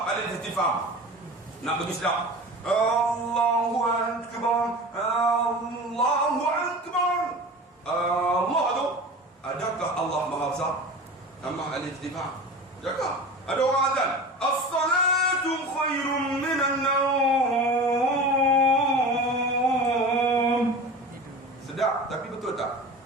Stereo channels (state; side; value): normal; both; correlation 0.34